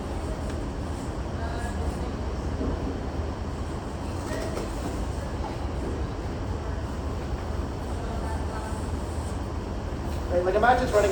Right? Like imagine it's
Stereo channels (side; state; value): both; identical; correlation 1.00